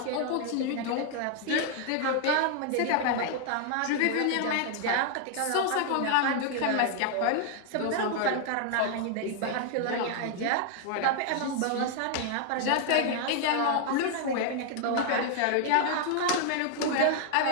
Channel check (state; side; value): different; both; correlation 0.00